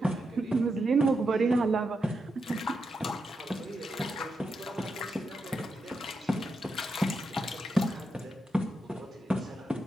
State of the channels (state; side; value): normal; both; correlation 0.85